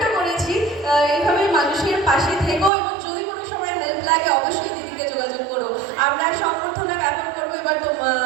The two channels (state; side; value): drops out; left; at 2.7 s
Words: করেছি। এইভাবে মানুষের পাশে থেকো, এবং যদি কোনো সময় হেল্প লাগে অবশ্যই দিদিকে যোগাযোগ করো। আমরা সংবর্ধনা জ্ঞাপন করবো এবার।